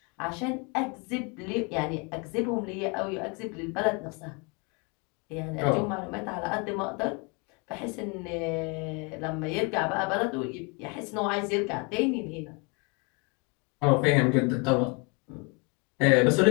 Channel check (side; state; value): right; quieter; 31.8 dB